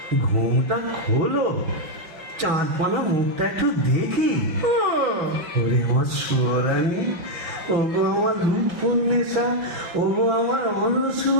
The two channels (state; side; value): late; left; 6.0 ms